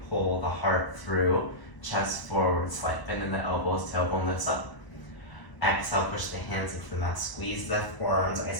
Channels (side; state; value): right; late; 1.0 ms